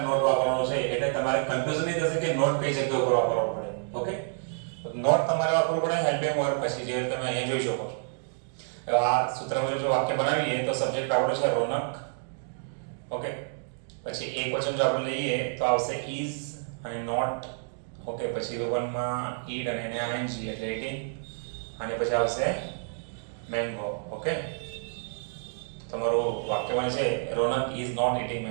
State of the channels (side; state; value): left; silent; digital silence